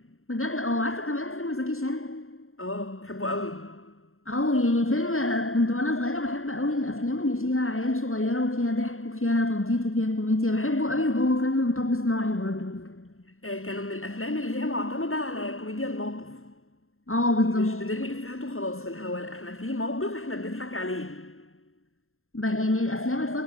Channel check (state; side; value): late; right; 0.61 ms